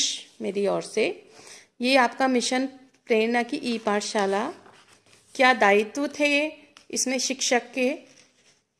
मेरी ओर से। ये आपका मिशन प्रेरणा की ई पाठशाला, क्या दायित्व थे इसमें शिक्षक के।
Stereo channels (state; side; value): identical; both; correlation 1.00